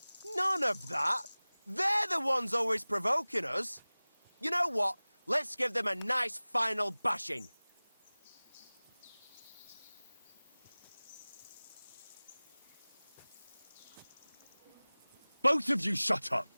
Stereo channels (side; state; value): both; inverted; correlation -1.00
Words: None of that. They're the ones always provoking us. You know what? Let's give them a nice final bashing. Both of you shut up,